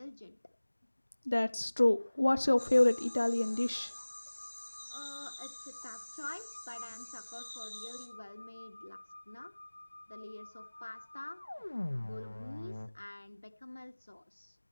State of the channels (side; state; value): both; inverted; correlation -1.00